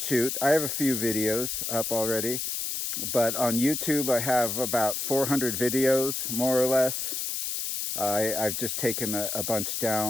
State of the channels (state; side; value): noise; left; hiss, 2 dB below the sound